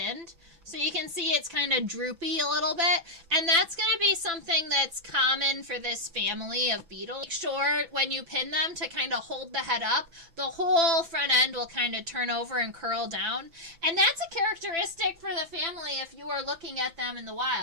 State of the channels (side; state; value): left; late; 5.9 ms